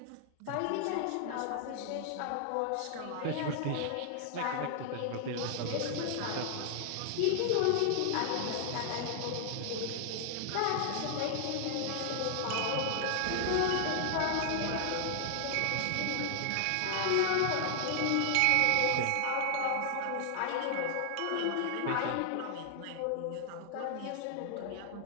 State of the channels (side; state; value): both; different; correlation 0.00